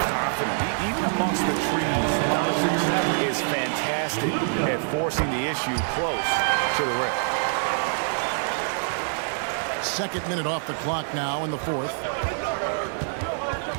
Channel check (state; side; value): silent; left; digital silence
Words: Even amongst the trees, Doncic is fantastic at forcing the issue close to the rim. Second minute off the clock now in the fourth.